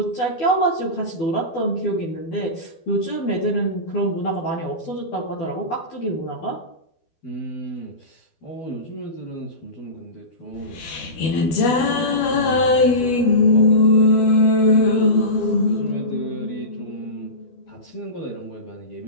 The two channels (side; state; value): right; late; 12 ms